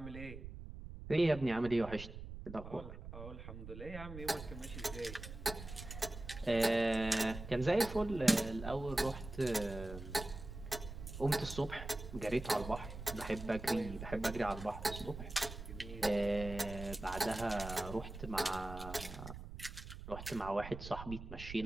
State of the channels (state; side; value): noise; right; rumble, 11 dB below the sound